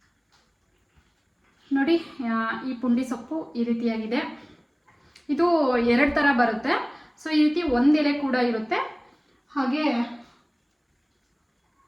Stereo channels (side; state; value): both; identical; correlation 1.00